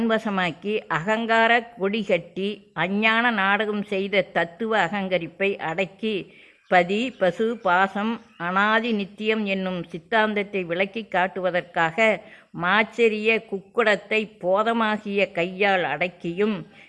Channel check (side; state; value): both; identical; correlation 1.00